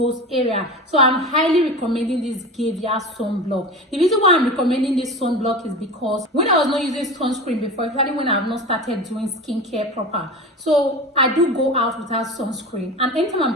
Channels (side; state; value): both; normal; correlation 0.29